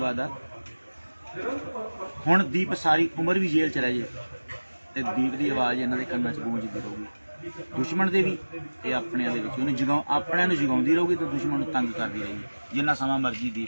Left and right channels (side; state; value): both; inverted; correlation -1.00